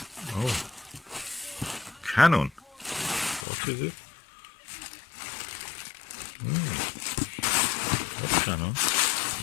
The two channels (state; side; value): drops out; right; at 3.5 s